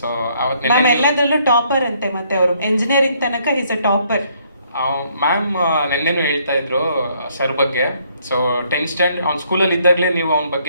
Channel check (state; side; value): inverted; both; correlation -0.67